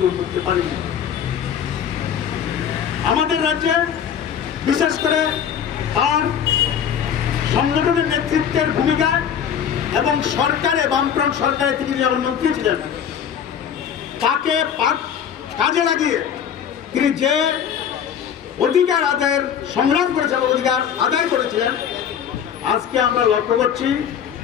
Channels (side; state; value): right; quieter; 8.4 dB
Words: করতে পারিনি। আমাদের রাজ্যে বিশেষ করে তার সংগঠনের নেতৃত্বের ভূমিকা এবং সরকারে, বামফ্রন্ট সরকারে তিনি যেমন মন্ত্রী ছিলেন, তাকে কাজে লাগিয়ে তিনি যে অধিকার আদায়ের সংগ্রাম করেছেন, অধিকার আদায় করেছিলেন, আজকে আমরা লক্ষ্য করছি